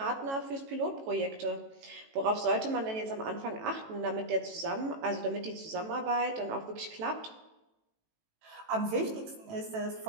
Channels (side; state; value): left; late; 18 ms